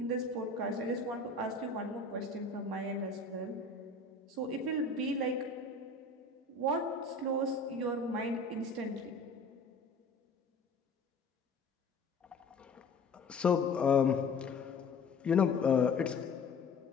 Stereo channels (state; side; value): quieter; right; 3.5 dB